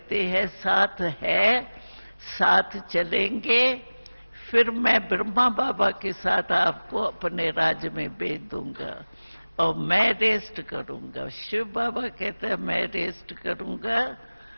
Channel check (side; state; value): both; inverted; correlation -0.99